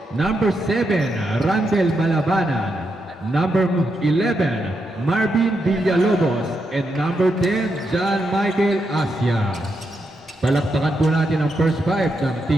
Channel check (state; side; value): normal; both; correlation 0.83